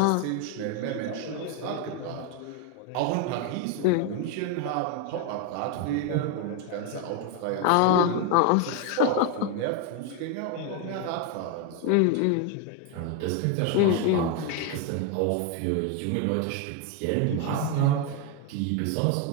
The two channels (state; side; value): different; both; correlation 0.01